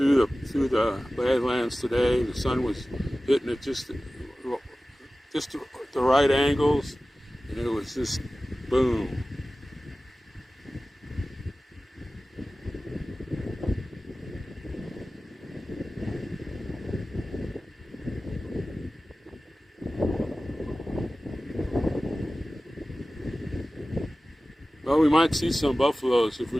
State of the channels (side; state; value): both; normal; correlation 0.96